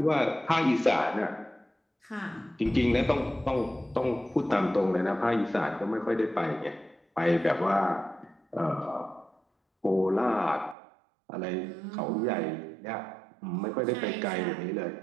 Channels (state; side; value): drops out; left; at 10.8 s